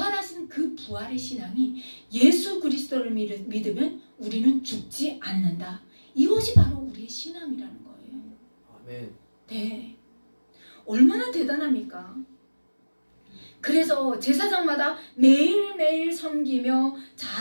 그 부활의 신앙이, 예수 그리스도를 믿으면 우리는 죽지 않는다. 이것이 바로 우리의 신앙이라는 거예요. 아멘. 네. 얼마나 대단합니까? 그래서 제사장마다 매일매일 섬기며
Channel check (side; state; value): both; inverted; correlation -1.00